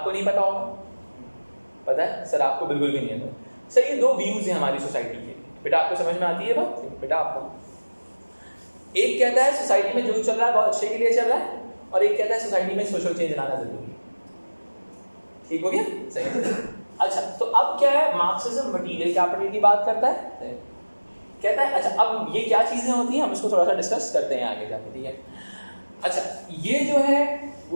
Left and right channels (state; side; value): inverted; both; correlation -1.00